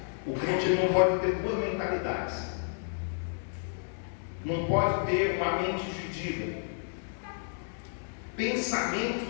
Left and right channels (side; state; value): right; silent; digital silence